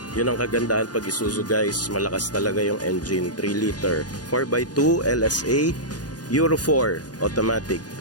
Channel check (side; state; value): right; late; 0.69 ms